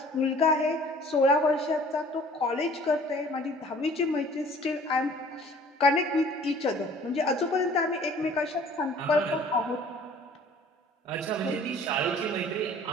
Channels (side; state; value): both; normal; correlation 0.51